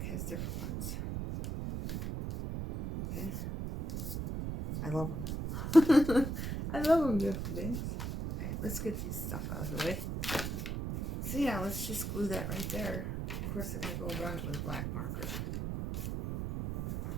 has different ones. Okay? I love them. I love them, beautiful things. Alright, let's get these stuff out of the way. So yeah, let's just glue that right there. Of course, I'm going to go around it with a black marker.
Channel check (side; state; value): right; noise; rumble, 3 dB below the sound